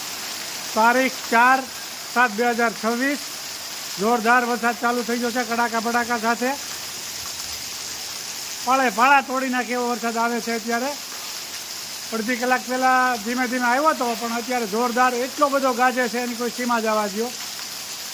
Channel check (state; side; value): identical; both; correlation 1.00